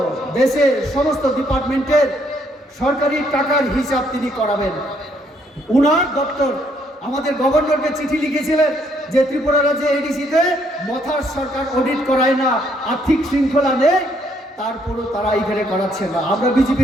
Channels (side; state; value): both; normal; correlation 0.70